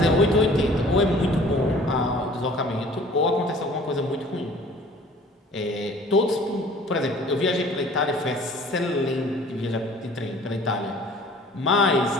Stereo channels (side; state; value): both; normal; correlation 0.50